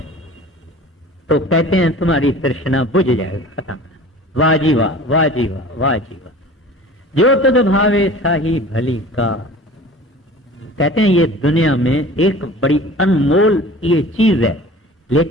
तो कहते हैं तुम्हारी तृष्णा बुझ जाएगा, खत्म। वाह जी वाह, वाह जी वाह, वाह जी वाह। जो तुझ भावे साही भली का। कहते हैं ये दुनिया में एक बड़ी अनमोल ये चीज है,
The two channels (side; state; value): both; normal; correlation 0.42